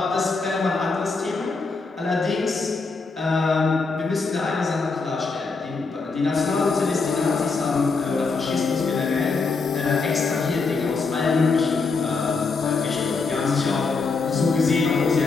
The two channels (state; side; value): quieter; right; 4.3 dB